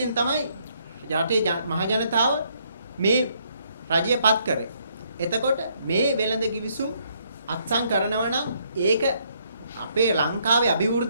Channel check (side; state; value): both; inverted; correlation -0.70